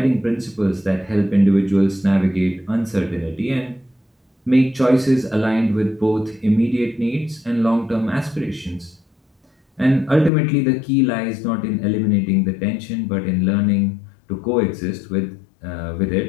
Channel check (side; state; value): right; drops out; at 10.3 s